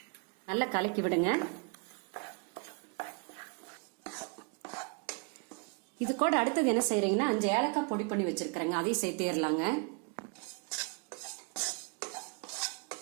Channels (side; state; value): left; quieter; 33.9 dB